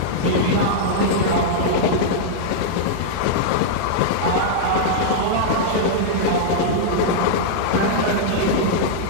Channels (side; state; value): both; different; correlation -0.02